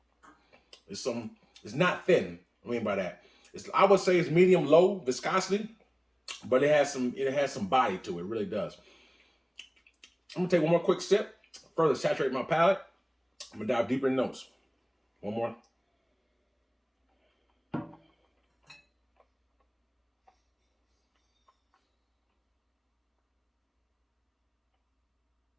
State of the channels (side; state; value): both; identical; correlation 1.00